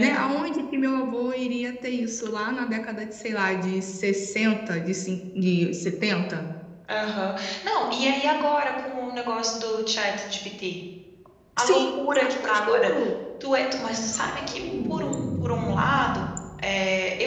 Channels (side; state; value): both; identical; correlation 1.00